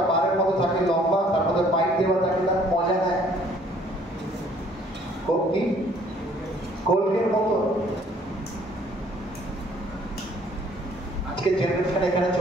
বারের মতো থাকে, লম্বা, তার মধ্যে পাইপ দেওয়া থাকে, তার মজা নেয় কি কোল্ডের মতো। আজকে জেনারেশন এখানে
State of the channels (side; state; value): both; normal; correlation 0.59